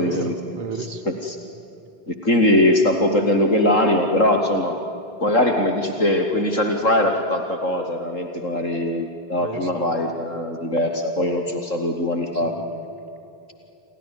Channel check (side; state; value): right; late; 3.8 ms